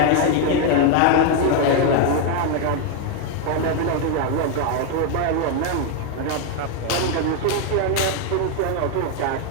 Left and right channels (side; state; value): both; different; correlation 0.01